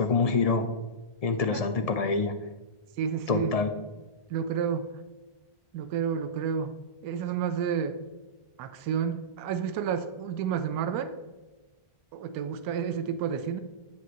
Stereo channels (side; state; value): right; late; 1.7 ms